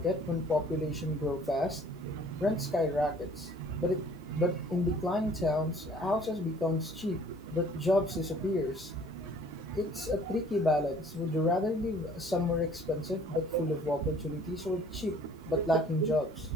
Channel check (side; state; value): both; normal; correlation 0.55